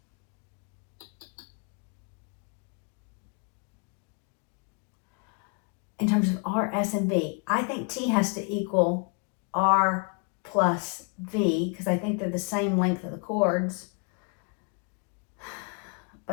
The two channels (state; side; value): quieter; right; 37.3 dB